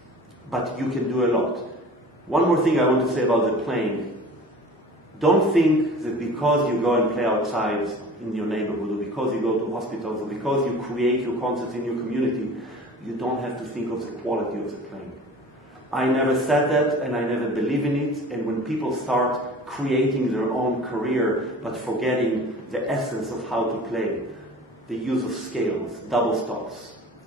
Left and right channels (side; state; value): both; normal; correlation 0.42